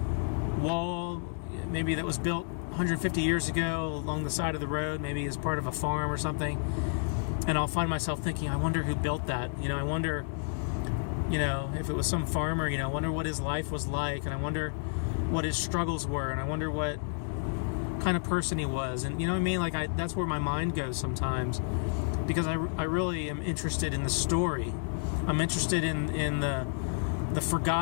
wall, maybe that was built 150 years ago along the side of the road, maybe as part of a farm or something, and I'll find myself thinking, I wonder who built that. I wonder, if it was some farmer, I wonder what his life was like, and I wonder what his struggles were, and I wonder what kind of person he was. And what I mean? That's where my mind goes sometimes, because I really am interested in the story. I'm interested in the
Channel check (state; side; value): silent; right; digital silence